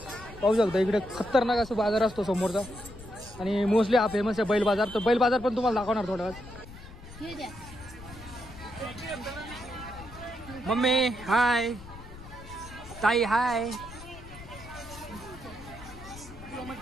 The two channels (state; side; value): noise; left; rumble, 16 dB below the sound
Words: पाहू शकता इकडे खतरनाक असं बाजार असतो समोरचा, आणि मोस्टली हा फेमस आहे बैल बाजार. तर बैल बाजार पण तुम्हाला दाखवणार थोड्या वेळात. मम्मी हाय, ताई हाय.